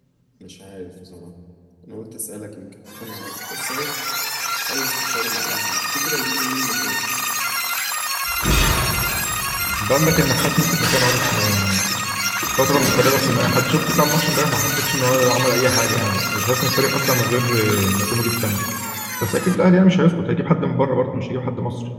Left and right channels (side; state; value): both; identical; correlation 1.00